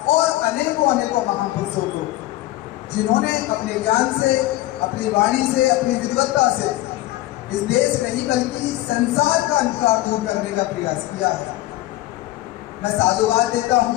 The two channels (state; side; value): quieter; right; 16.7 dB